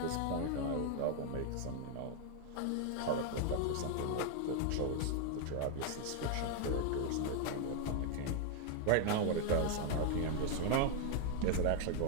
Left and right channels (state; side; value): different; both; correlation 0.00